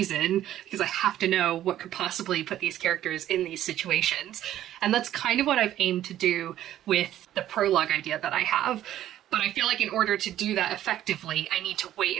because I have to know what could possibly put these characters in these situations. And that's kind of what I've aimed to do with the prologue idea that I have. But I feel like in order to do that effectively, I need to wait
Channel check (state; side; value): quieter; left; 12.4 dB